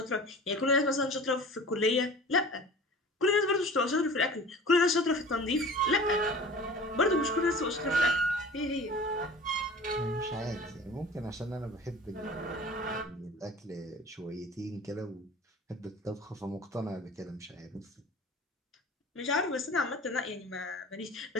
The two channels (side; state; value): both; normal; correlation 0.41